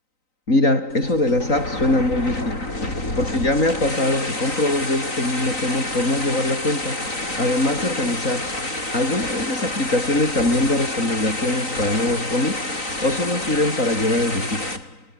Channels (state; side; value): late; right; 3.9 ms